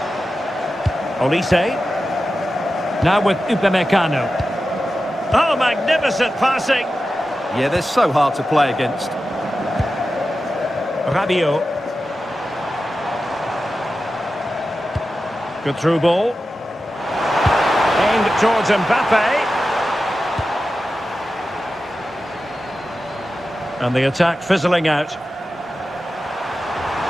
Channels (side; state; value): both; normal; correlation 0.92